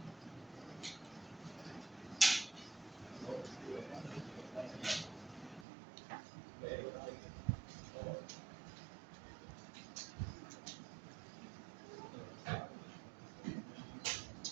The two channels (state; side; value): drops out; left; at 5.7 s